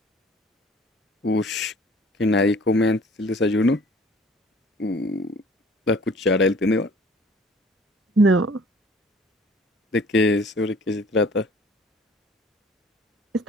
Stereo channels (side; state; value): both; normal; correlation 0.49